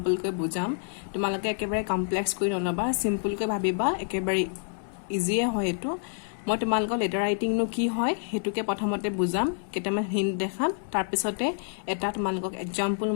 বুজাম তোমালোকে একেবাৰে কমপ্লেক্স কৰি নলবা সিম্পলকৈ ভাবিবা একেবাৰে ইজিয়ে হয় এটো মই তোমালোকক লেটাৰ ৰাইটিংনো কি হয় হেতুকে প্ৰথমতে বুজাম কেটামান হিন্ট দেখাম তাৰ পিছতে এটা তোমালোকক এক্সাম্পল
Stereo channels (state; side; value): silent; right; digital silence